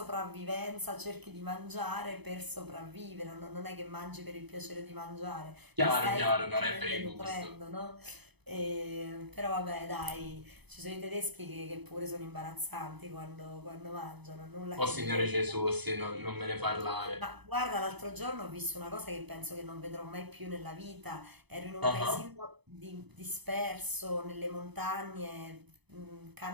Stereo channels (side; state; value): left; late; 0.99 ms